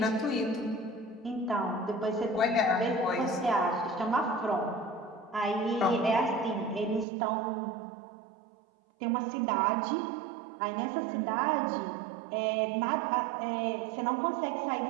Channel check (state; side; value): drops out; left; at 7.1 s